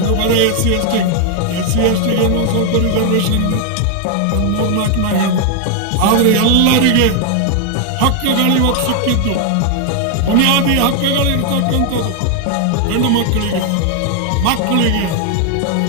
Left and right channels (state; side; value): different; both; correlation 0.00